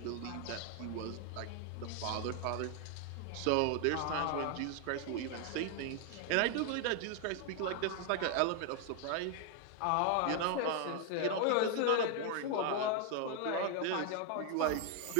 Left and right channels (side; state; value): both; different; correlation 0.00